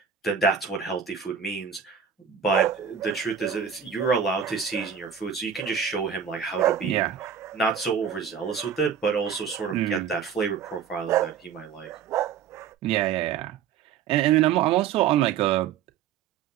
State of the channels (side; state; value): left; quieter; 7.7 dB